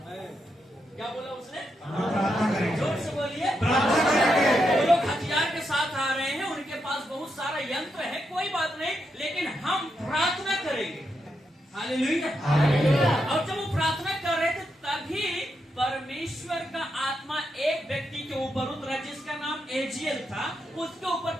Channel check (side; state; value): both; normal; correlation 0.83